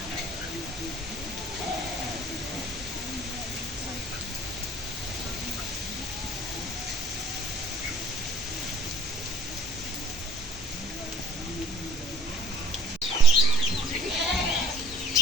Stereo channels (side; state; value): both; normal; correlation 0.56